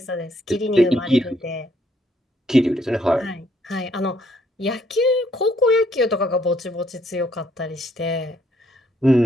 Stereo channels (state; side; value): normal; both; correlation 0.68